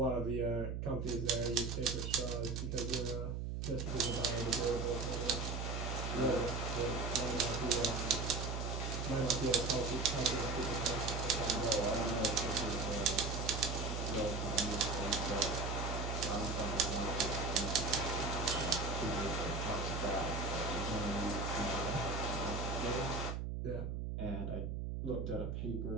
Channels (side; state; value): right; noise; hum, 3 dB below the sound